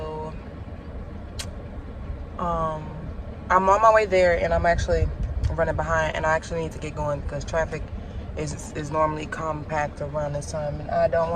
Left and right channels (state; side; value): identical; both; correlation 1.00